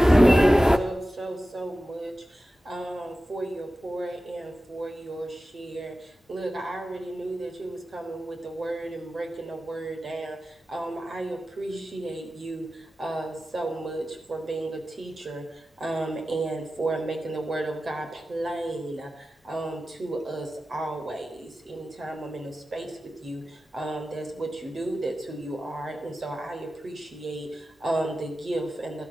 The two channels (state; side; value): normal; both; correlation 0.94